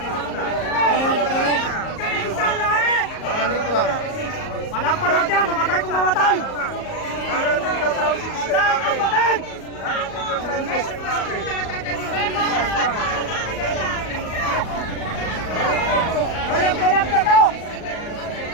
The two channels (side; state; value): right; late; 38 ms